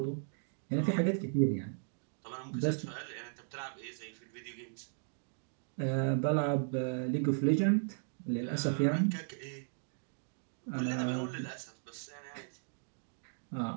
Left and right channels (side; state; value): left; silent; digital silence